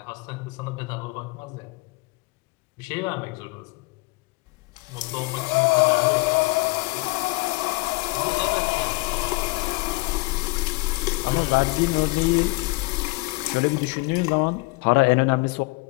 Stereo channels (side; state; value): right; quieter; 24.9 dB